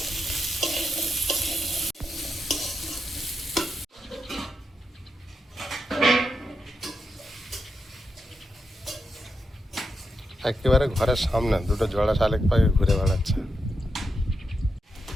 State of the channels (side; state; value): both; normal; correlation 0.85